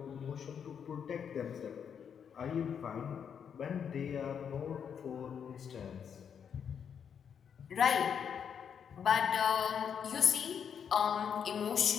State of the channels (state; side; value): quieter; right; 7.6 dB